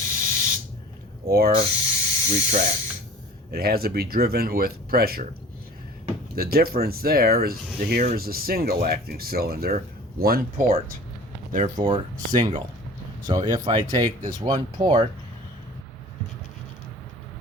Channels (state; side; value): normal; both; correlation 0.43